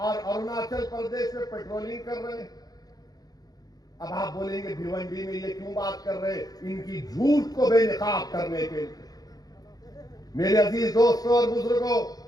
अरुणाचल प्रदेश में पेट्रोलिंग कर रहे हैं। अब आप बोलेंगे भिवंडी में ये क्यों बात कर रहे हैं, इनकी झूठ को बेनकाब करने के लिए। मेरे अजीज दोस्तों और बुजुर्गों,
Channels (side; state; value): right; late; 0.18 ms